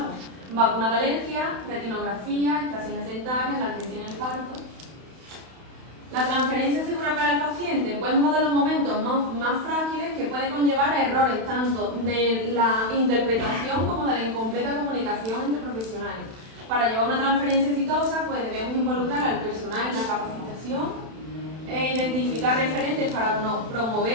Vacuna de alergia, retinografía, extracciones dentarias, la atención en el parto. La transferencia segura para el paciente, pues uno de los momentos más frágiles que puede conllevar a errores tanto de la interpretación como de la incompleta comunicación entre profesionales. Para llevar una transferencia exitosa, pues debemos involucrar al personal en la capacitación, identificar referentes para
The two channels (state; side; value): late; left; 31 ms